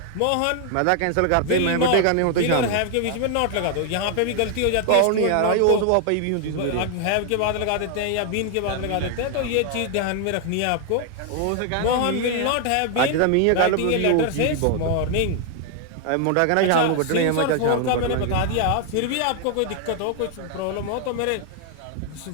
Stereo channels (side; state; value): both; different; correlation 0.00